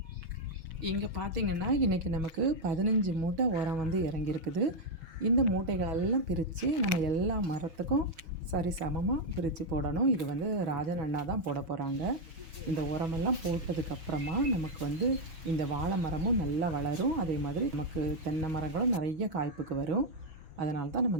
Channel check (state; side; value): late; left; 6.2 ms